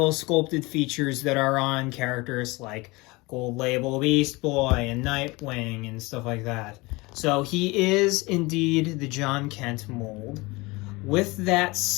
sculpted features that are on characters like Gold Label Beast Boy and Nightwing and stuff like that. So he is indeed the John Kent mold. With that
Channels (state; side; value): quieter; right; 23.7 dB